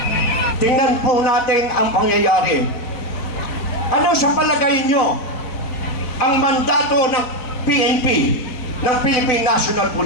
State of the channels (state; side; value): late; right; 3.9 ms